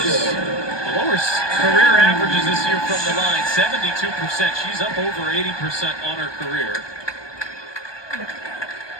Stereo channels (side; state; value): right; late; 1.2 ms